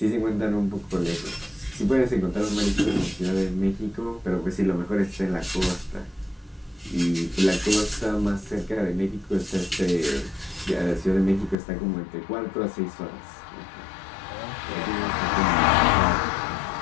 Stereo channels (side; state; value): right; drops out; at 11.6 s